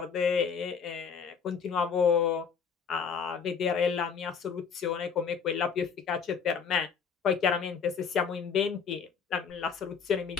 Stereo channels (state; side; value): quieter; right; 6.4 dB